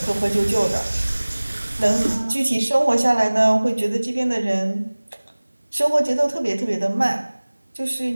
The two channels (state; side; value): inverted; both; correlation -1.00